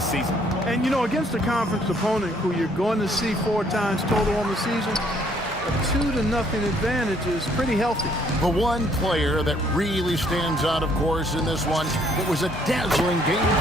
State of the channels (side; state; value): both; normal; correlation 0.65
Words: season. And, you know, against a conference opponent who you're going to see 4 times total on the season, a 2-0 advantage is pretty healthy. The one player that really stands out, of course, in this one, it was a dazzling game